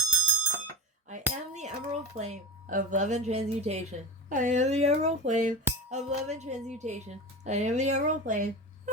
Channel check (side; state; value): both; normal; correlation 0.25